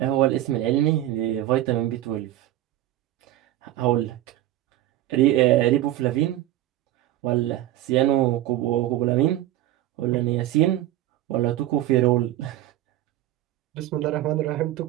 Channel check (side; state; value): left; quieter; 14.4 dB